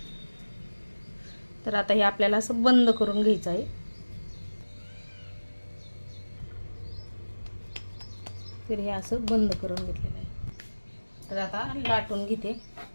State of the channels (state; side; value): inverted; both; correlation -1.00